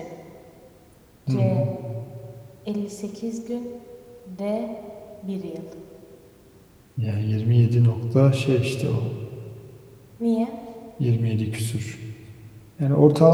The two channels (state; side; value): identical; both; correlation 1.00